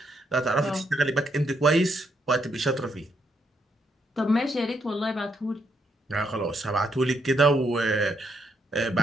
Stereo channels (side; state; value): both; normal; correlation 0.76